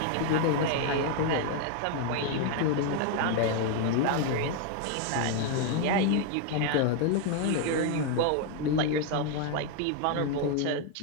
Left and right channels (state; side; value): different; both; correlation 0.00